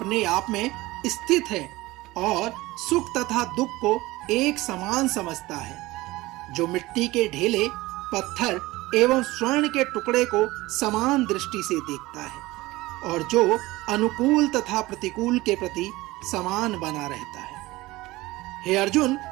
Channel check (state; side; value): quieter; left; 19.5 dB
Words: आप में स्थित है और सुख तथा दुख को एक समान समझता है, जो मिट्टी के ढेले, पत्थर एवं स्वर्ण के टुकड़े को समान दृष्टि से देखता है और जो अनुकूल तथा प्रतिकूल के प्रति समान बना रहता है। हे अर्जुन,